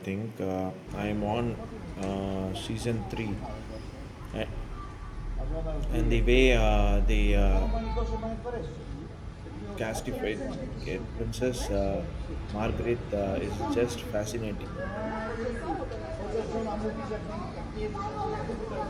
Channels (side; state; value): both; identical; correlation 1.00